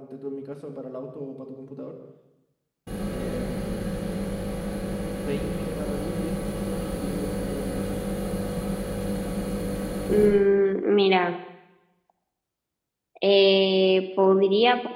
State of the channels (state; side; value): identical; both; correlation 1.00